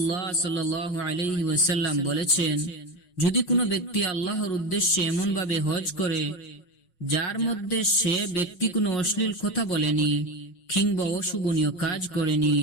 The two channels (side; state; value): right; late; 5.5 ms